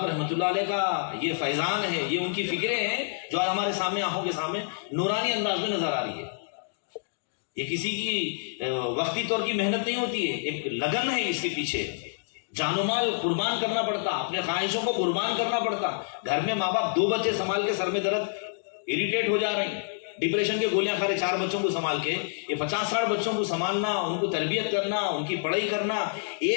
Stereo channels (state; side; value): silent; right; digital silence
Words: رحمۃ اللہ علیہ کا یہ فیضان ہے، یہ ان کی فکریں ہیں جو آج ہمارے سامنے آنکھوں کے سامنے نورانی انداز میں نظر آ رہی ہے. یہ کسی کی وقتی طور کی محنت نہیں ہوتی ہے، ایک لگن ہے اس کے پیچھے، جان و مال قربان کرنا پڑتا، اپنے خواہشوں کو قربان کرنا پڑتا. گھر میں ماں باپ 2 بچے سنبھال کے سر میں درد، اریٹیٹ ہو جا رہے ہیں، ڈپریشن کے گولیاں کھا رہے 4 بچوں کو سنبھال کے. یہ 50-60 بچوں کو سنبھالنا، ان کو تربیت کرنا، ان کی پڑھائی کرنا،